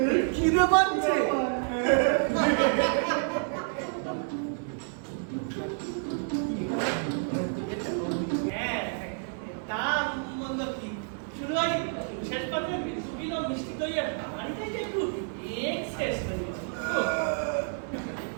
খিদে পাচ্ছে শেষ পর্যন্ত মিষ্টি দই আর বাড়িতে একটু এক্সেস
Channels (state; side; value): silent; left; 58 dB below the other